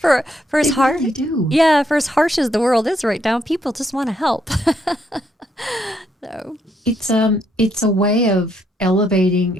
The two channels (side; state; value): both; normal; correlation 0.74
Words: as They hard, really do. yeah, for as harsh as the world is right now, people just want to help. So, It's a way of